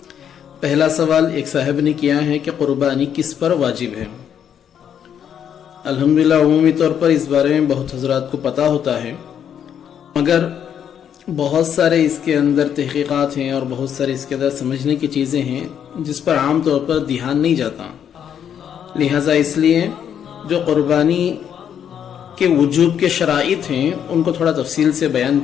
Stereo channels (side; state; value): right; quieter; 8.8 dB